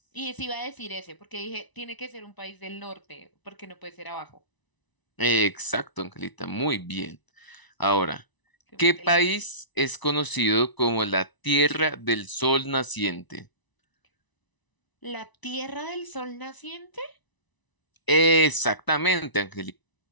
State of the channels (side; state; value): right; late; 1.0 ms